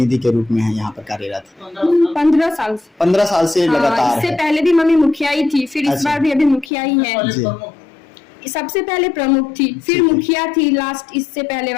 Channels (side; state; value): right; drops out; at 6.7 s